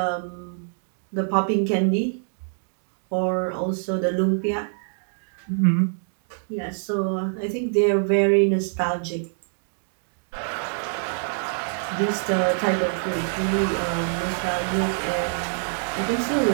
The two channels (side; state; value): left; silent; 62 dB below the other